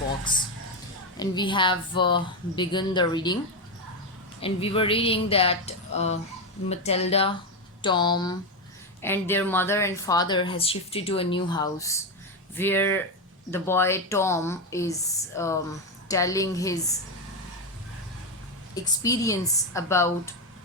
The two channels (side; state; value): both; normal; correlation 0.09